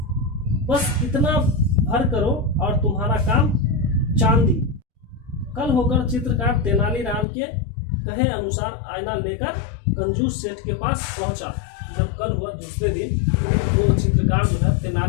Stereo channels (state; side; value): drops out; right; at 7.2 s